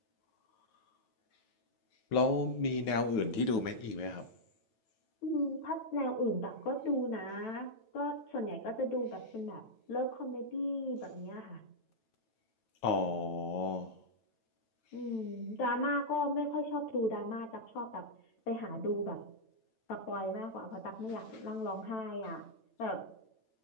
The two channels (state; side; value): late; right; 9.1 ms